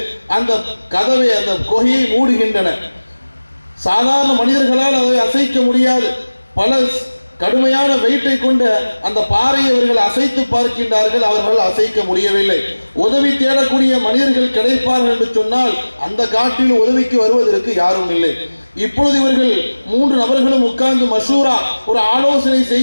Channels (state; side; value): inverted; both; correlation -1.00